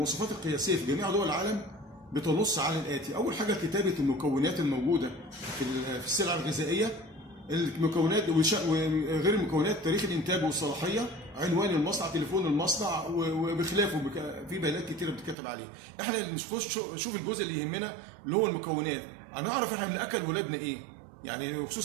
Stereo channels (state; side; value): drops out; left; at 15.4 s